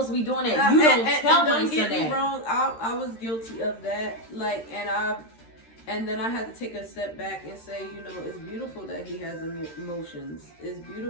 to be doing that. You don't tell my son that. Don't get me wrong, I was guilty of that. Like, and then I had to take a step back and say, you know, it's beautiful that he has emotions. It's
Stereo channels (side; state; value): right; late; 13 ms